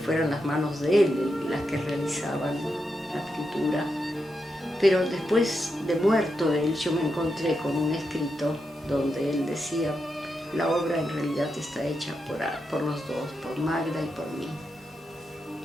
las manos de él las que realizaban la pintura. Pero después de muerto él, yo me encontré con un escrito donde él decía: la obra en realidad está hecha por los dos, por Magda y por mí.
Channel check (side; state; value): both; normal; correlation 0.86